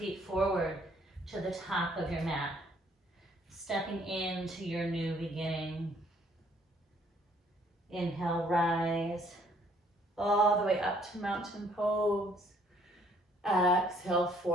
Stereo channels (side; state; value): both; normal; correlation 0.63